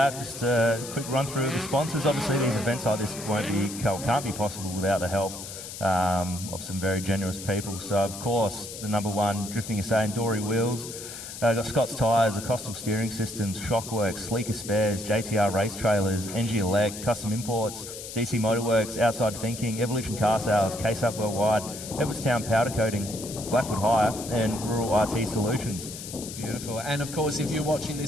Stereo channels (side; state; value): left; noise; hiss, 10 dB below the sound